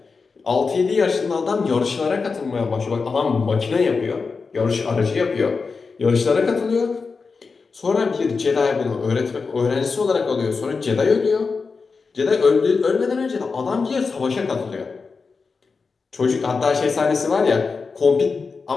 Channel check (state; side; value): quieter; right; 4.7 dB